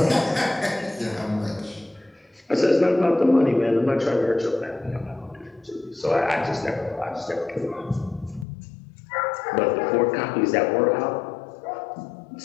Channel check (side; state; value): right; drops out; at 8.5 s